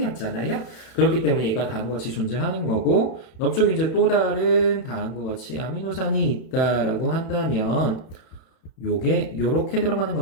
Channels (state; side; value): late; right; 31 ms